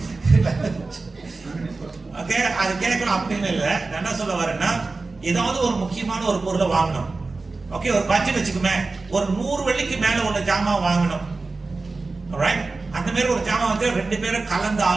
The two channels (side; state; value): left; quieter; 3.7 dB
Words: ஓகே, அது கேட்கணும் அப்படின்னு இல்லை. நான் என்ன சொல்ல வரேன்னா, ஏதாவது ஒரு முக்கியமான ஒரு பொருளை வாங்கணும். ஓகே, ஒரு பட்ஜெட் வச்சுக்குமே, ஒரு 100 வெள்ளிக்கு மேல ஒரு ஜாமான் வாங்கணும். ரைட்? அந்த மாதிரி ஒரு ஜாமான் வந்து ரெண்டு பேரும் கலந்து